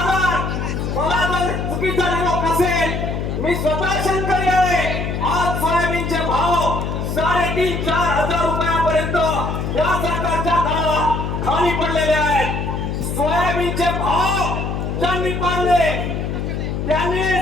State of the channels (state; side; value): noise; left; hum, 2 dB below the sound